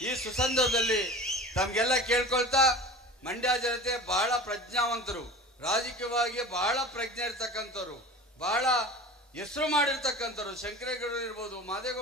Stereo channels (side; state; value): both; normal; correlation 0.36